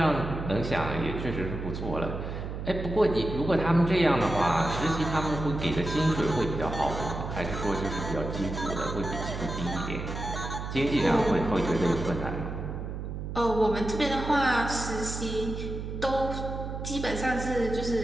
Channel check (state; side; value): noise; right; hum, 6 dB below the sound